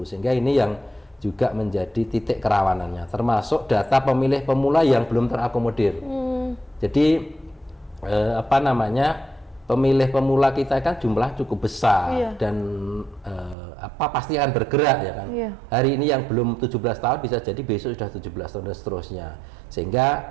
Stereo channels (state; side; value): drops out; left; at 13.6 s